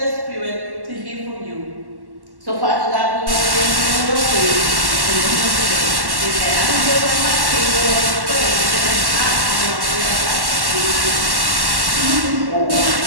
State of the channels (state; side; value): late; left; 1.1 ms